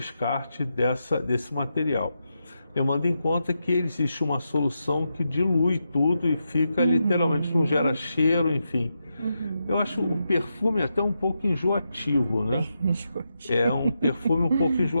desse material. Levando em conta que existe uma solução que dilui tudo e fica literalmente, não gera cheiro, enfim. Eu acho o perfume até um pouco enjoativo, né? É um perfume um pouco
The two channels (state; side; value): inverted; both; correlation -0.86